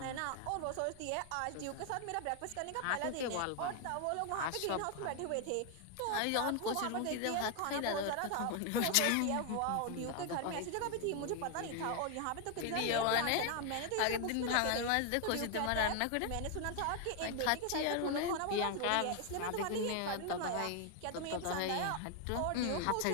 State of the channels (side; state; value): both; different; correlation 0.00